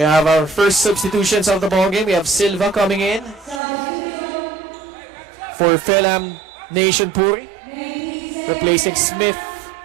have our first substitutions of the ball game. We have Silva coming in for Film Nation Puri, replacing Smith.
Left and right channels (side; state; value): left; drops out; at 3.6 s